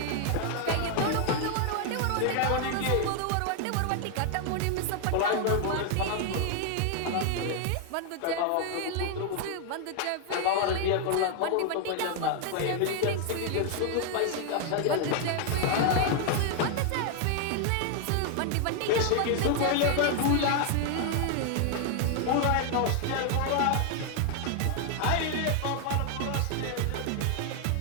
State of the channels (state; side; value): different; both; correlation 0.00